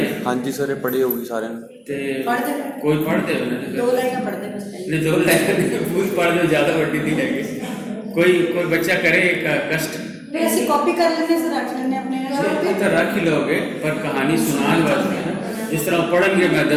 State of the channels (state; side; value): identical; both; correlation 1.00